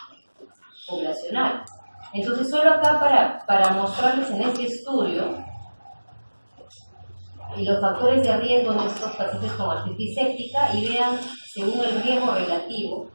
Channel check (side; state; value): both; inverted; correlation -1.00